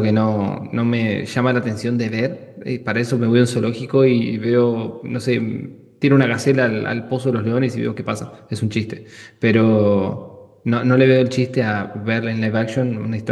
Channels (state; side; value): identical; both; correlation 1.00